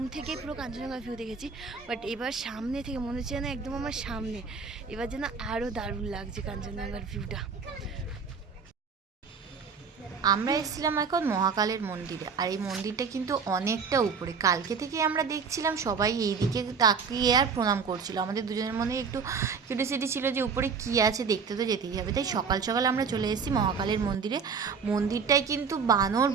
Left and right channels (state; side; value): quieter; left; 5.6 dB